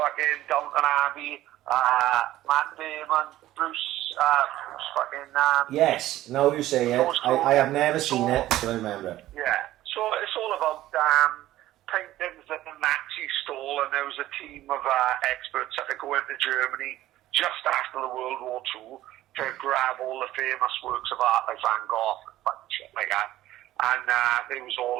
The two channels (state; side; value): quieter; left; 14.7 dB